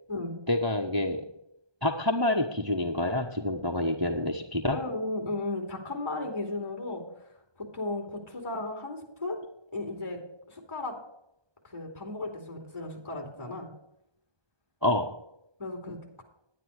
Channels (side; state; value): left; late; 1.2 ms